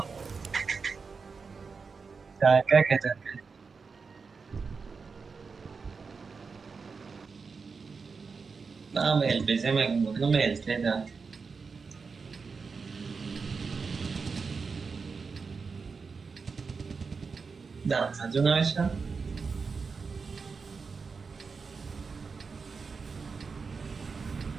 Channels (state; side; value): quieter; left; 5.0 dB